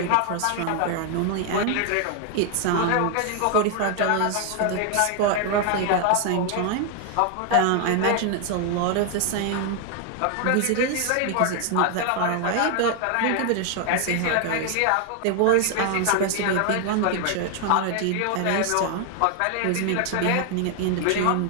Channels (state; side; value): different; both; correlation 0.00